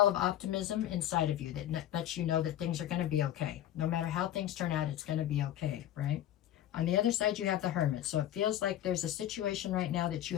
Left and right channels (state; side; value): quieter; right; 12.0 dB